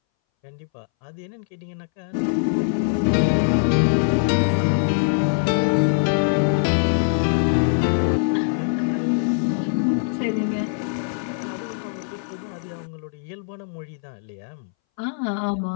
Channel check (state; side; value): silent; right; 62 dB below the other